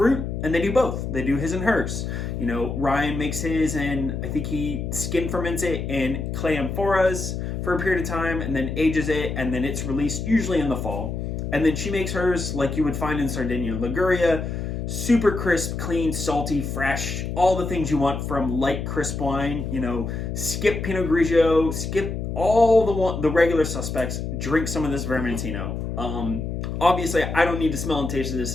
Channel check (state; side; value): noise; left; hum, 4 dB below the sound